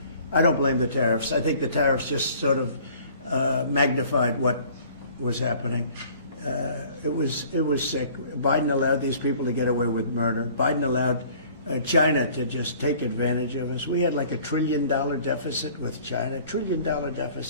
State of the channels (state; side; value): inverted; both; correlation -0.52